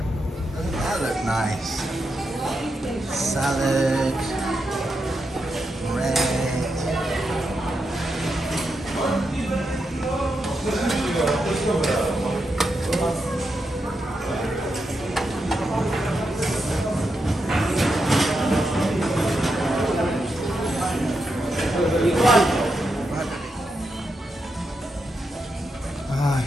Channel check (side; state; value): both; normal; correlation 0.85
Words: That looked nice. Salad, bread. Ah,